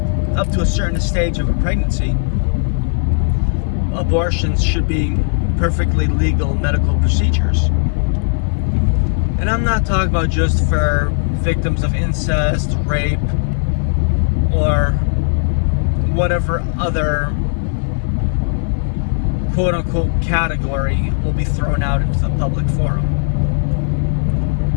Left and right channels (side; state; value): right; silent; 68 dB below the other